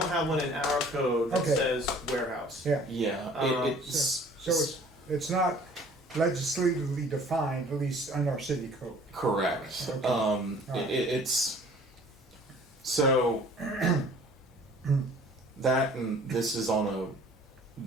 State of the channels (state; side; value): normal; both; correlation 0.51